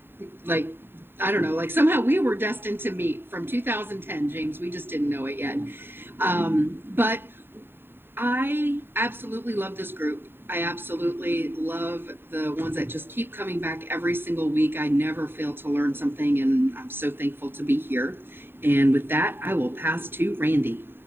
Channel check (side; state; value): left; late; 0.11 ms